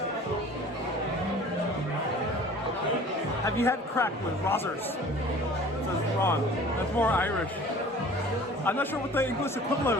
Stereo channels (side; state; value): both; normal; correlation 0.46